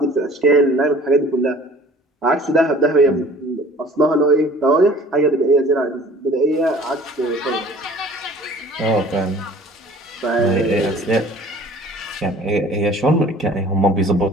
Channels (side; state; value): both; normal; correlation 0.49